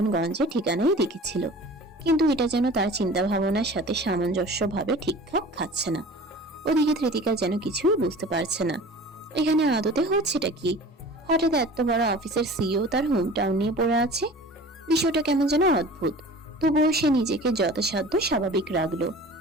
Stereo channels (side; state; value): both; normal; correlation 0.41